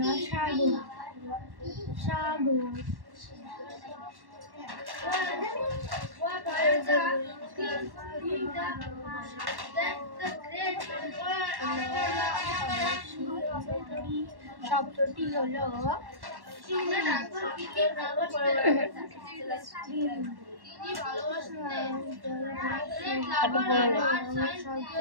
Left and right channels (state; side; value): late; left; 1.1 ms